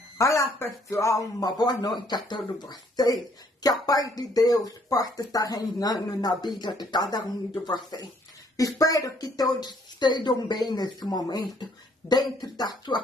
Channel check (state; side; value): normal; both; correlation 0.65